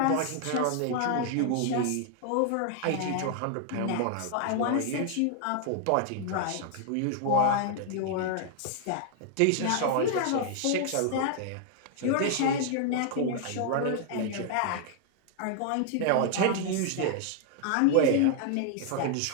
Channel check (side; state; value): both; different; correlation 0.00